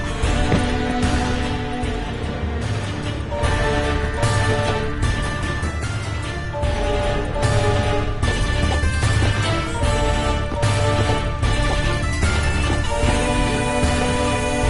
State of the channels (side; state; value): both; identical; correlation 1.00